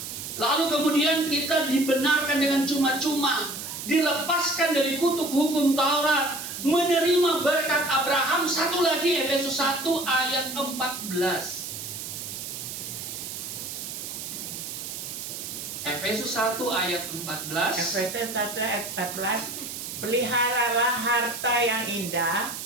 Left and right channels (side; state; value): right; noise; hiss, 7 dB below the sound